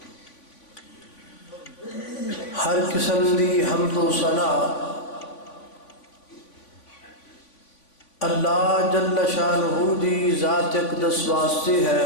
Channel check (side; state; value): right; late; 3.5 ms